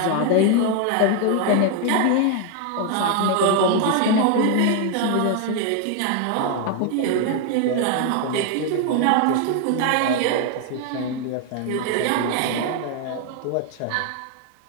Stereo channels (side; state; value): both; different; correlation 0.01